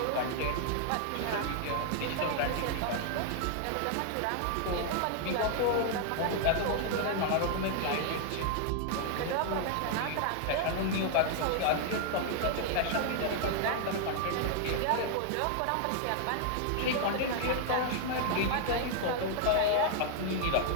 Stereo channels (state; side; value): different; both; correlation 0.00